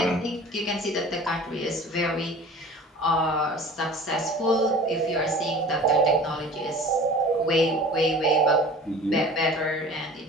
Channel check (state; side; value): normal; both; correlation 0.42